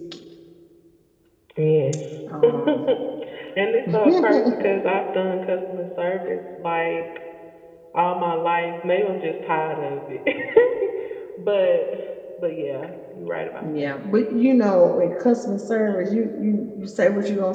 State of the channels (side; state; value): both; identical; correlation 1.00